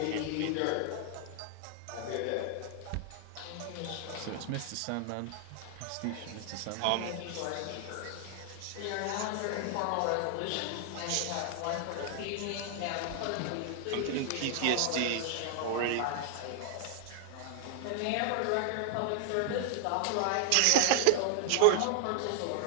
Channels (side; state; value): both; different; correlation 0.00